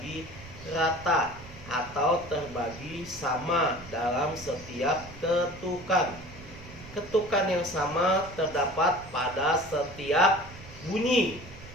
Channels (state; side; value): noise; right; rumble, 17 dB below the sound